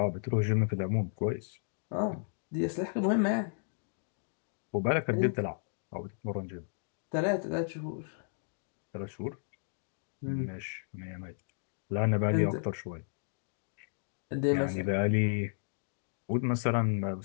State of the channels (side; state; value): right; silent; digital silence